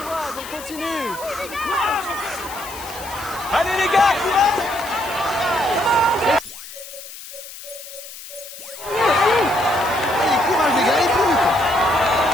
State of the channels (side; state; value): left; noise; hiss, 14 dB below the sound